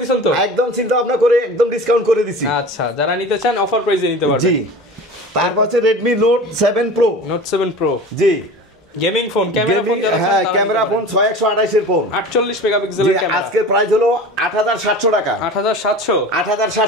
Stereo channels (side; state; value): both; normal; correlation 0.36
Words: দিছেন তো? একদম চিন্তা ভাবনা করে একদম ডিসকাউন্ট করে দিছি। আচ্ছা, যারা নিতে চান অফার প্রাইসে নিতে পারবেন। জি, তারপর হচ্ছে Redmi Note 7 Pro। জি গেমিং ফোন, ক্যামেরা ফোন, হ্যাঁ ক্যামেরা ফোন 6128 এর ফোন, 48 মেগাপিক্সেলের ক্যামেরা। আজকের প্রাইস হলো 8700 টাকা।